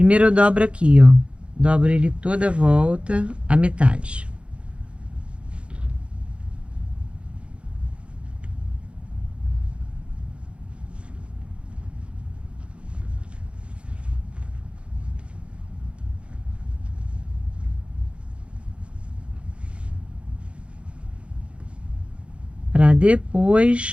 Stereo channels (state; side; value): late; left; 0.059 ms